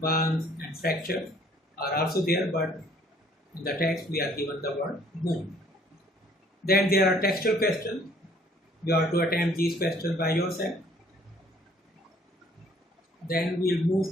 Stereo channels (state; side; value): normal; both; correlation 0.59